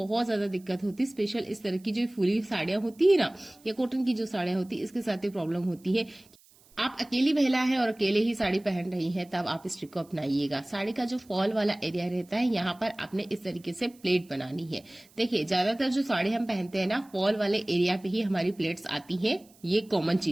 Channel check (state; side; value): noise; right; hiss, 28 dB below the sound